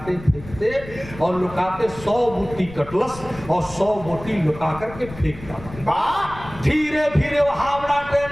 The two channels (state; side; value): noise; left; rumble, 15 dB below the sound